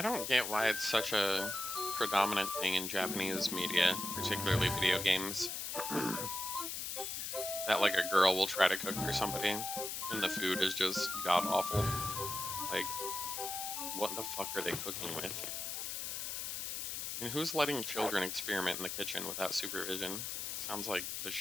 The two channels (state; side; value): noise; left; hiss, 4 dB below the sound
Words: don't get why it's such a predominant thing in Japanese media, particularly video games, that like a girl will try to cook for somebody and the food is just god awful. Like, what the fuck are they cooking with? And who's letting children experiment in the kitchen without supervision? Sounds like the